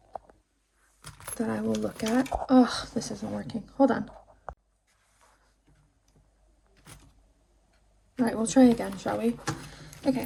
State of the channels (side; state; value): both; identical; correlation 1.00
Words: That I will look at. Oh, this isn't working. Hold on. All right, we'll try again, shall we? Okay,